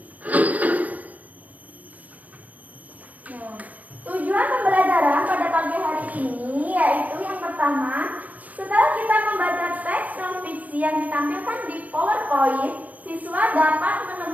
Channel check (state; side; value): late; left; 0.076 ms